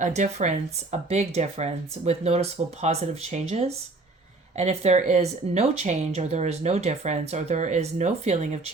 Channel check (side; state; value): left; quieter; 3.3 dB